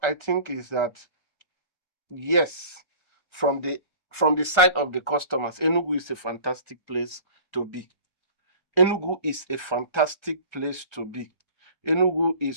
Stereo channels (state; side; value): late; right; 1.3 ms